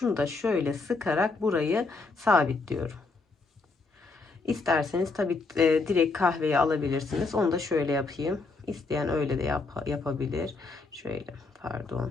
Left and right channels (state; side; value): quieter; right; 3.8 dB